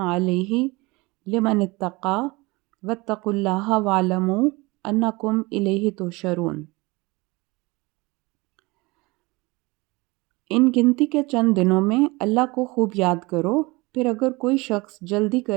علیہ لمن اتقى واتقوا اللہ واعلموا انکم الیہ تحشرون۔ ان گنتی کے چند دنوں میں اللہ کو خوب یاد کرو، پھر اگر کوئی شخص جلدی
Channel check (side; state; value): left; quieter; 23.8 dB